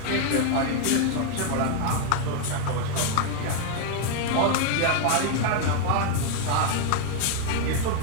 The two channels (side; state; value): both; different; correlation 0.00